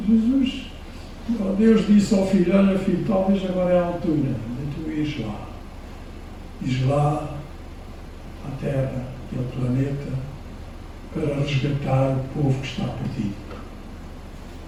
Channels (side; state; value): both; identical; correlation 1.00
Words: Jesus, Deus disse ao filho: olha filho, talvez agora é a altura de tu ires lá. Ires lá à Terra, aquele planeta, para resgatar o povo que está perdido.